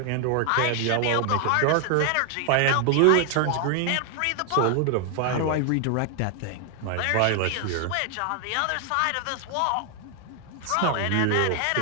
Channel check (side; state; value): both; different; correlation 0.00